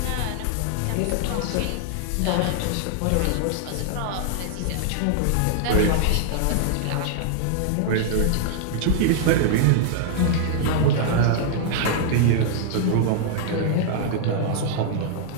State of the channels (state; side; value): different; both; correlation -0.01